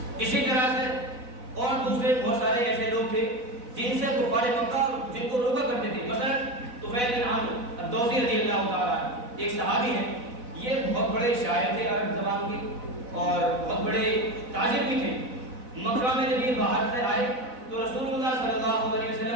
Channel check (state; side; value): late; left; 4.0 ms